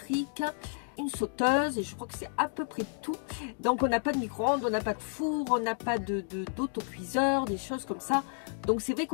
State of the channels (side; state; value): right; silent; digital silence